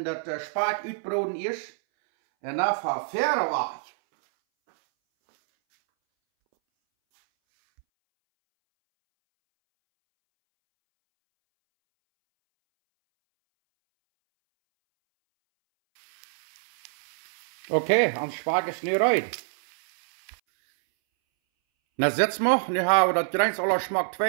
dat spaak uitbroden is. En dan verder weg. Okay, ons spaak is nu uit. Na setzen wir, nu haben wir das Greins aller Schmack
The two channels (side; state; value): left; silent; 61 dB below the other